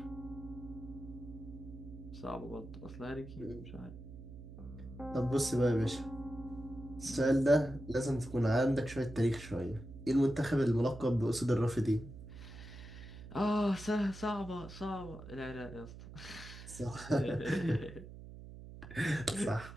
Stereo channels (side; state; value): right; noise; hum, 14 dB below the sound